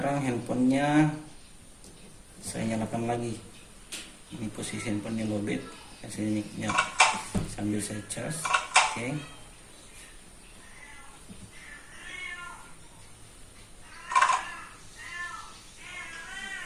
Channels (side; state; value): both; identical; correlation 1.00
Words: handphonenya saya nyalakan lagi. Ini posisi handphonenya lowbat. Saya sambil saya cas. Oke.